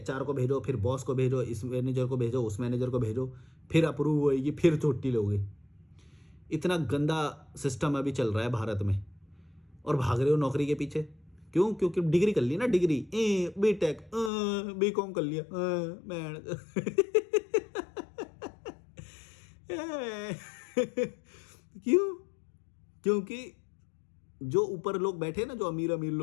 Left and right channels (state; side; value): drops out; right; at 14.3 s